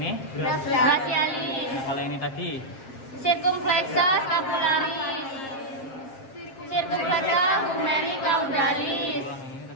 Brachialis. Kalau ini tadi. Circumflexa scapularis. Circumflexa humeri caudalis. Ulang yang ini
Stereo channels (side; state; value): right; late; 7.5 ms